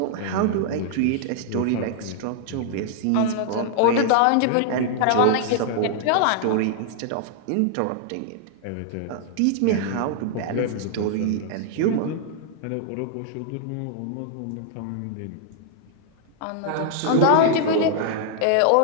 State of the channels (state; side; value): different; both; correlation -0.01